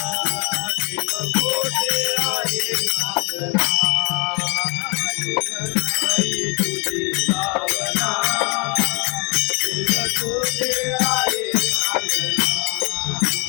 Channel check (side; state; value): right; quieter; 32.1 dB